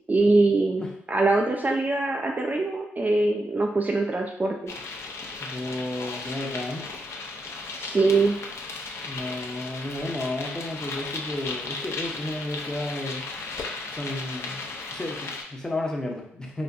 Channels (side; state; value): both; normal; correlation 0.82